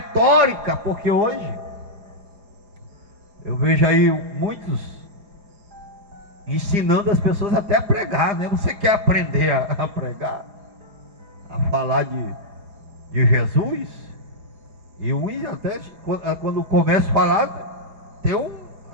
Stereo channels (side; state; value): left; late; 4.9 ms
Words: porque hoje eu vejo aí muitos ensinando as pessoas até a pregar, né? Você quer aprender a pregar, a falar de Jesus? E uns até, quando começa a falar, tem